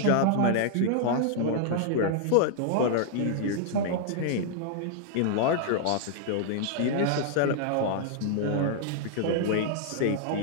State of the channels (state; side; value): different; both; correlation -0.01